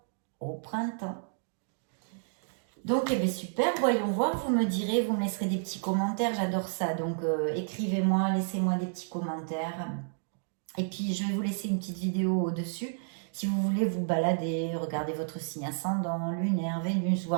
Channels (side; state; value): left; silent; digital silence